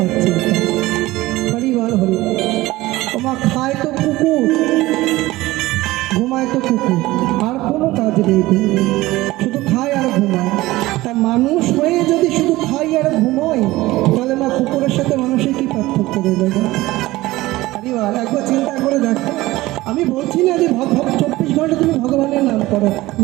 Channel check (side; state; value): left; quieter; 18.3 dB